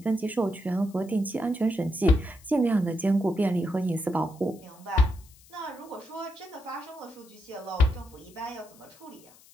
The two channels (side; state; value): left; noise; hiss, 25 dB below the sound